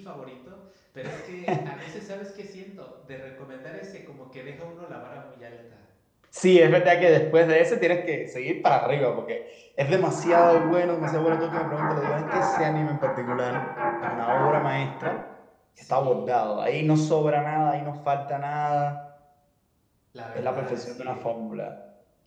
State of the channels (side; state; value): both; identical; correlation 1.00